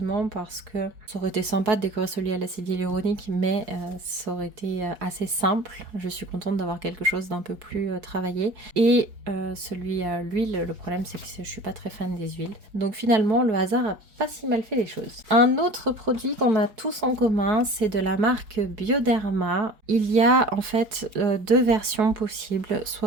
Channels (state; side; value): late; left; 4.7 ms